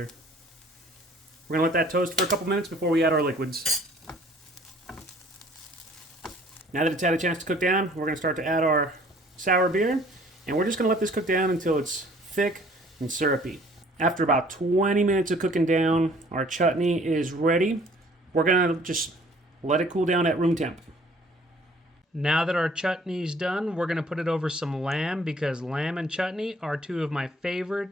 We're going to let that toast for a couple minutes before we add our liquids. Now that it's had a chance to cook down, we're going to start to add our sour beer, and we're just going to let this cook down until it's thick and syrupy. After about 20 minutes of cooking down, our chutney is ready. We're going to just let it cool down at room temp. Now that our chutney's done, we're going to put it over some lamb because lamb and chutney are 2 of my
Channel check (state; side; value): normal; both; correlation 0.56